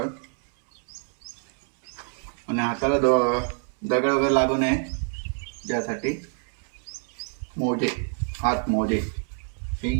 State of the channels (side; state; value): left; silent; 58 dB below the other